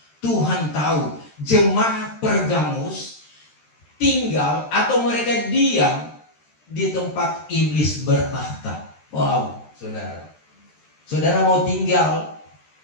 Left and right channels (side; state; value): right; late; 13 ms